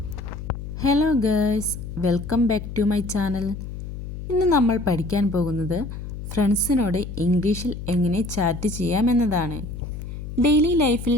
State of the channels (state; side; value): noise; left; hum, 9 dB below the sound